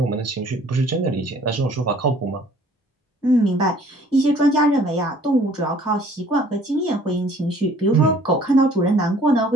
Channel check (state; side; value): normal; both; correlation 0.56